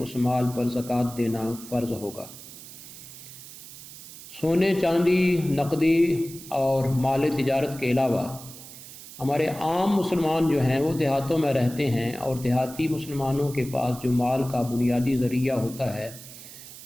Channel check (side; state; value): right; noise; hiss, 15 dB below the sound